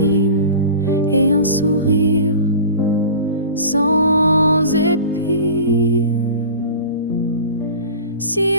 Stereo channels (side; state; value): both; inverted; correlation -0.36